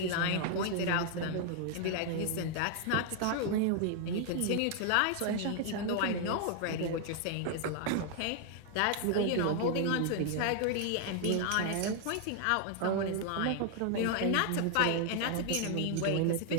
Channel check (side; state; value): both; different; correlation 0.00